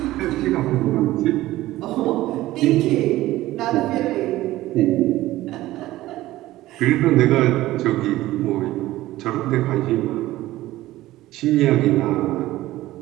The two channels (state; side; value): quieter; left; 16.3 dB